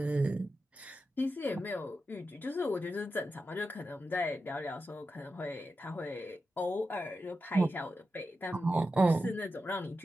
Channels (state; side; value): normal; both; correlation 0.90